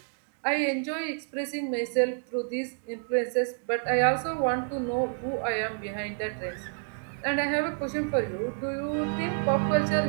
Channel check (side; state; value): left; silent; 59 dB below the other